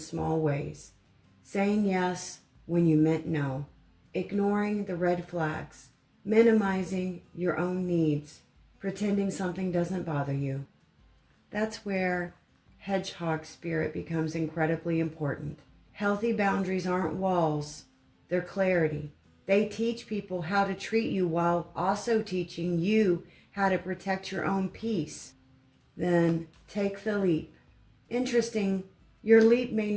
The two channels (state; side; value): identical; both; correlation 1.00